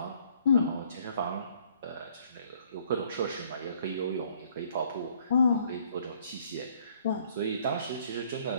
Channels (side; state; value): both; inverted; correlation -0.62